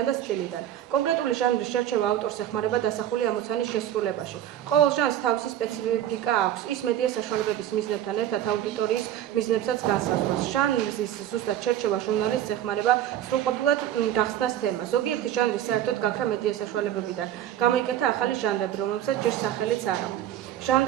და სტილიდან. კონკრეტული ჟანრის შერჩევა ავტორს ეხმარება დასახული ამოცანის შესრულებაში. ყოველ ჟანრს თავისი სპეციფიკა აქვს. ის მედია საშუალებების მიზნებთან ერთად აუდიტორიის მიზნებსაც განსაზღვრავს. ჟანრის ზუსტად შერჩევა ჟურნალისტს ეხმარება სრულყოფილად გახსნას თემა. ზოგიერთი ჟანრი საერთოდ გაქრა მედია საშუალებებიდან. გამოიკეთა ახალი ჟანრები, რომელსაც ჯერ სახელიც არ აქვთ.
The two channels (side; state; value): left; quieter; 11.6 dB